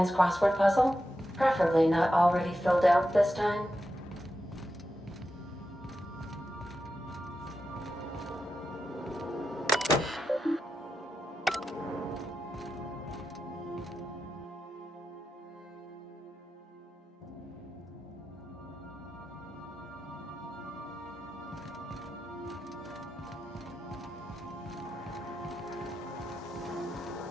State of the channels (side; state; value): both; normal; correlation 0.89